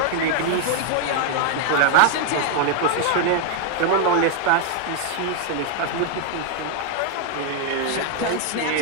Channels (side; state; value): both; different; correlation 0.00